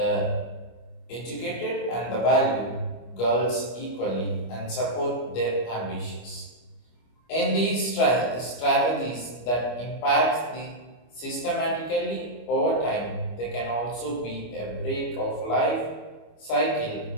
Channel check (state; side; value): late; right; 25 ms